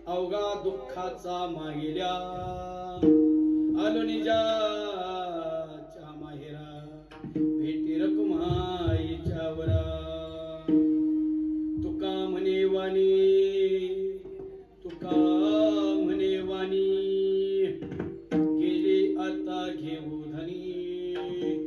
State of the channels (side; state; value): both; identical; correlation 1.00